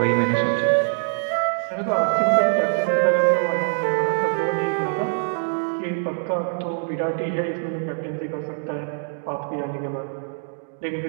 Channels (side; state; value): left; silent; digital silence